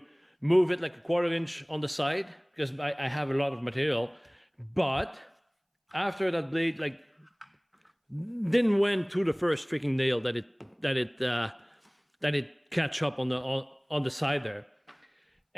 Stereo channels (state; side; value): identical; both; correlation 1.00